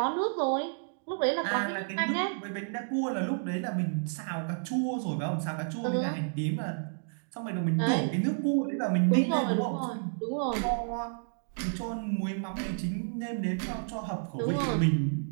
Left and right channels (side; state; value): left; silent; digital silence